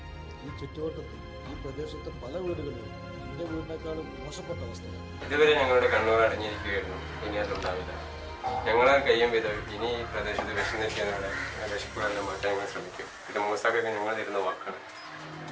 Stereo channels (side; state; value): both; identical; correlation 1.00